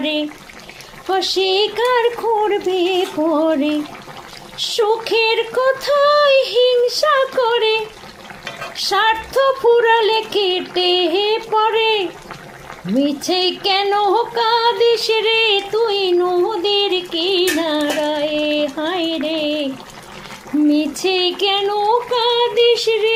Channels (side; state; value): both; identical; correlation 1.00